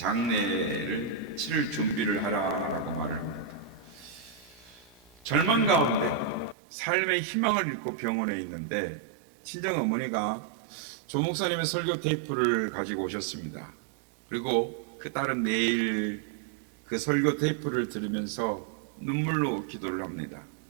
치를 준비를 하라라고 말을 합니다. 절망 가운데 삶의 희망을 잃고 병원에 있는데 친정 어머니가 조 목사님의 설교 테이프를 가지고 오셨습니다. 그리고 그 딸은 매일 그 설교 테이프를 들으면서 눈물로 기도를 합니다.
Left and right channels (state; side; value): drops out; left; at 6.6 s